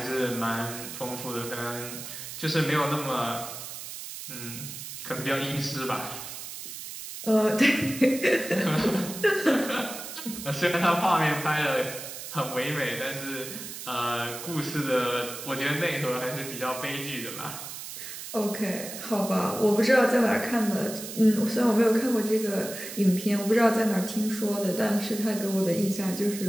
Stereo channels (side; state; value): right; noise; hiss, 10 dB below the sound